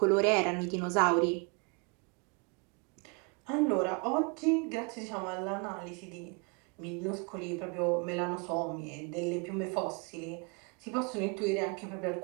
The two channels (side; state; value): left; quieter; 32.3 dB